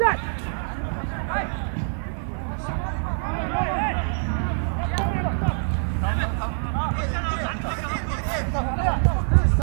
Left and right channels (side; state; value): left; silent; digital silence